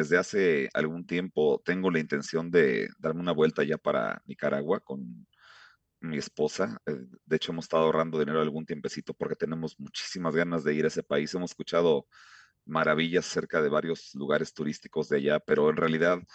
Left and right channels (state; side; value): identical; both; correlation 1.00